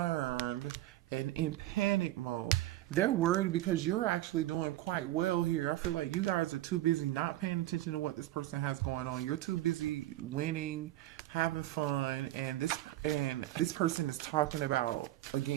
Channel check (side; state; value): left; quieter; 15.7 dB